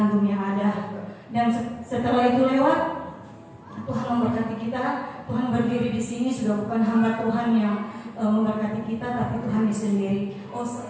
yang ada. Dan setelah itu lewat, Tuhan memberkati kita. Tuhan berdiri di sini, sudah bukan hamba Tuhan yang memberkati kita, tapi Tuhan sendiri.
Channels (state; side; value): identical; both; correlation 1.00